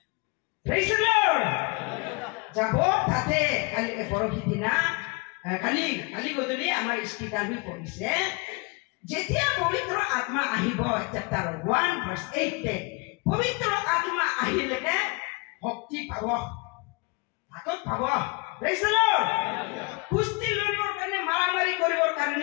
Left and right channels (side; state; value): right; quieter; 29.1 dB